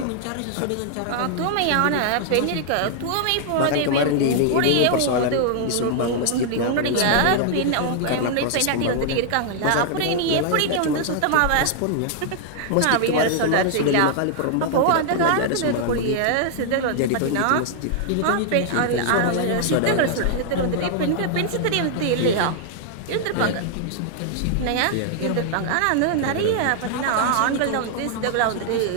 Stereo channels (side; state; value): both; different; correlation -0.01